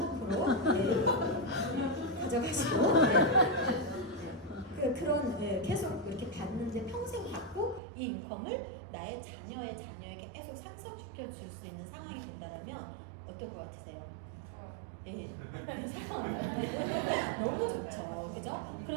가져가시고 그런 계속 이렇게 받는데 평생 받고 이 인컴을 나의 자녀에게 계속 상속시켜 줄 수 있는 상황이 된다면 어떨 것 같으세요? 네. 너무 좋죠. 그죠?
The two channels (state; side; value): drops out; left; at 7.8 s